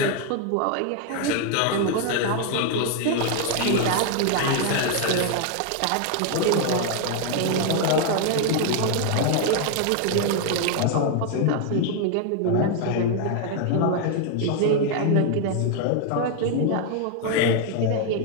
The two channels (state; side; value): different; both; correlation 0.00